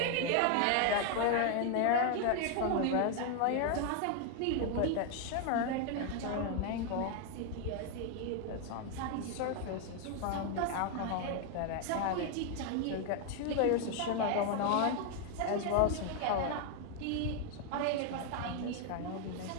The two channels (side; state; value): both; different; correlation 0.01